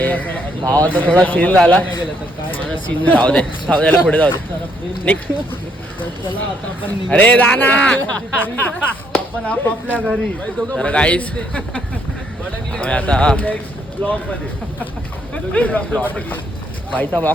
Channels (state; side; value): normal; both; correlation 0.70